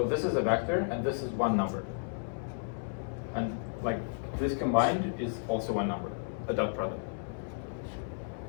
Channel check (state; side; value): silent; right; 56 dB below the other